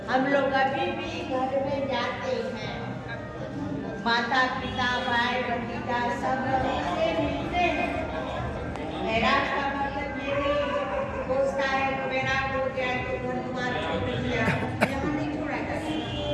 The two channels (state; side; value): identical; both; correlation 1.00